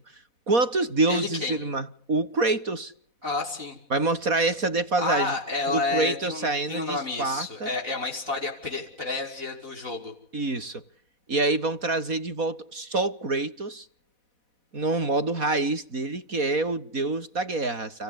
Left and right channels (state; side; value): late; left; 4.2 ms